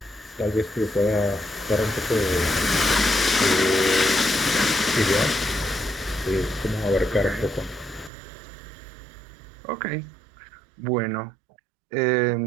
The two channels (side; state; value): left; drops out; at 8.1 s